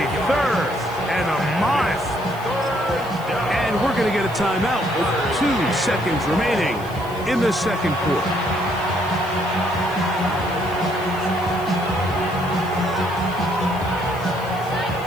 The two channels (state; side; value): noise; left; hiss, 21 dB below the sound